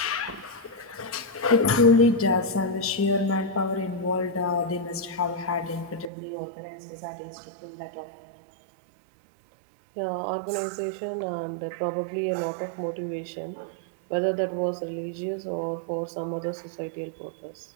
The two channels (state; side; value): drops out; left; at 6.1 s